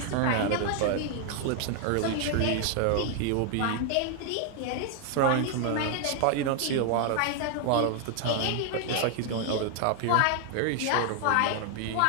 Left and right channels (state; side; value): different; both; correlation 0.00